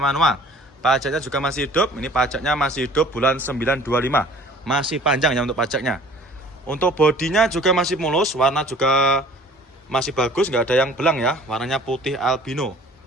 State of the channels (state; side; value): normal; both; correlation 0.50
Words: manual. Pajaknya juga masih hidup. Ini pajaknya masih hidup bulan 925. Masih panjang ya untuk pajaknya. Untuk bodinya juga masih mulus, warna juga masih bagus, nggak ada yang belang ya. Warnanya putih albino.